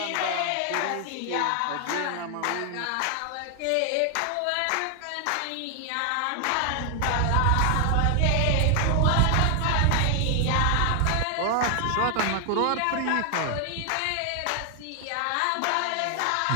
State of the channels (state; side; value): different; both; correlation 0.00